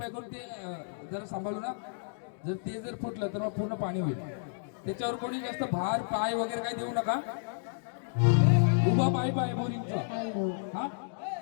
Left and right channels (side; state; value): right; silent; digital silence